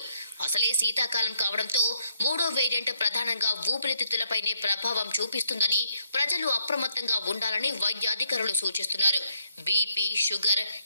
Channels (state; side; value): inverted; both; correlation -0.73